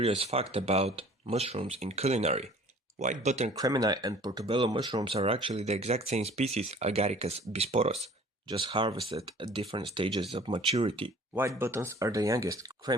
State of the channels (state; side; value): normal; both; correlation 0.49